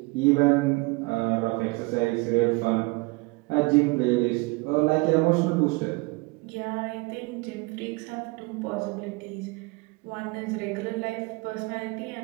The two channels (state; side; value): quieter; left; 26.0 dB